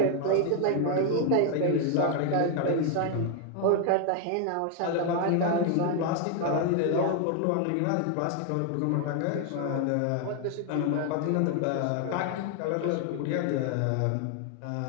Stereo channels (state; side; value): different; both; correlation 0.00